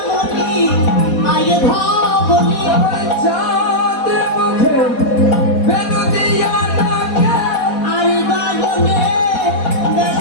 আয়ে ধামলি আমার চাঁদ মুখে বেনু দিয়া ডাকে আরে বাগনে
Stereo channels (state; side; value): late; right; 4.2 ms